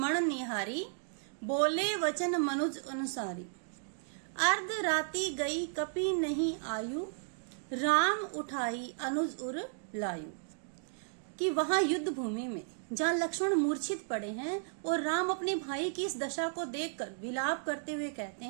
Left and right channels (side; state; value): left; silent; digital silence